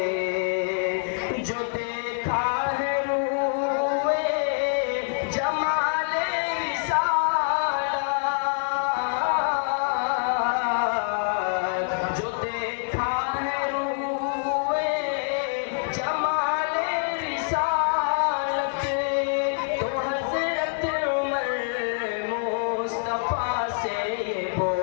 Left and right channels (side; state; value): right; silent; 56 dB below the other